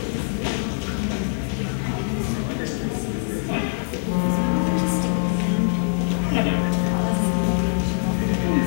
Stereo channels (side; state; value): right; silent; 63 dB below the other